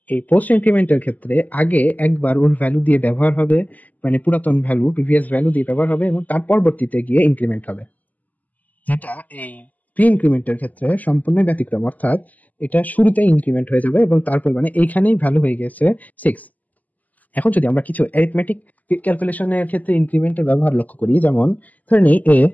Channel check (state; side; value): late; right; 0.079 ms